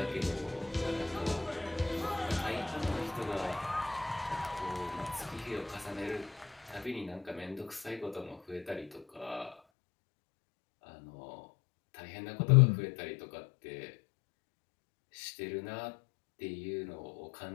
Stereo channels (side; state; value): right; drops out; at 9.6 s